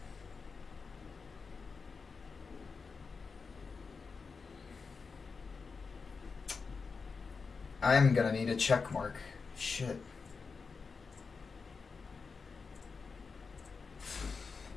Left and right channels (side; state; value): right; quieter; 4.9 dB